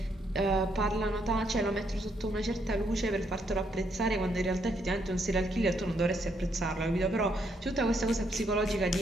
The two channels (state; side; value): normal; both; correlation 0.74